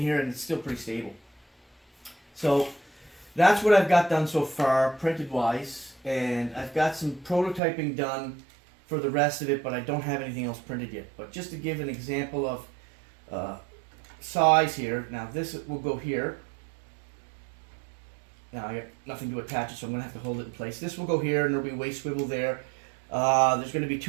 and it's still pretty stable. So that's what I've got done so far, printed wise, and I've got some prototyping done for the rest of it, but I don't have anything else printed yet. But just to give an example of size here, now this will go here. Now I got nothing to attach it, so I'm going to have to hold it in place. This will go here, and there'll be a waist swivel there. There's going to be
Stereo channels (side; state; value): left; drops out; at 7.6 s